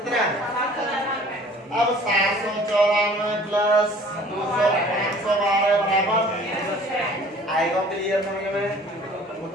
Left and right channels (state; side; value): normal; both; correlation 0.50